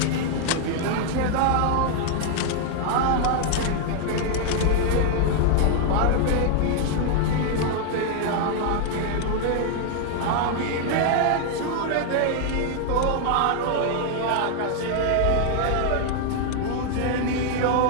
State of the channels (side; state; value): both; different; correlation 0.00